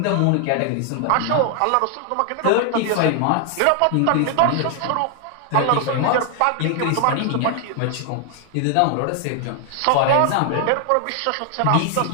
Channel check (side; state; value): both; different; correlation 0.00